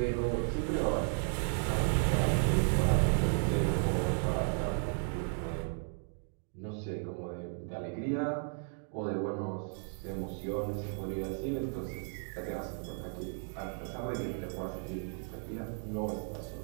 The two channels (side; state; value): left; silent; 55 dB below the other